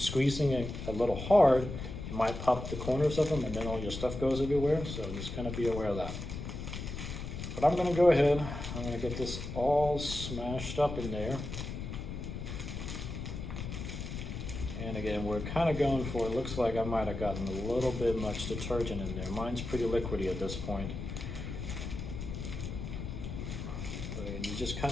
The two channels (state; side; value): noise; left; rumble, 6 dB below the sound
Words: it a little hard, you might pop the corners of them and then all your stuff goes everywhere, so just kind of be aware of that. But I'm gonna go ahead, I'm gonna get this all smashed up in there. And again, we're kind of going for, it looks like I might have gotten a little bit much detergent in there. Mine's pretty liquidy at this point. But again, you just